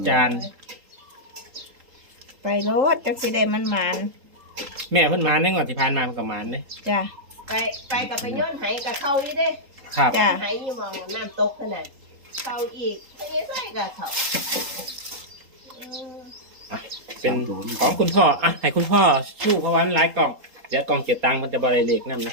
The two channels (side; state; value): left; late; 3.8 ms